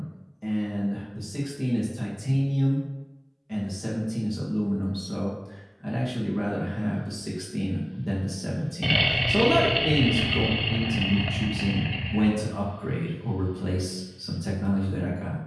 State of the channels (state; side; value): identical; both; correlation 1.00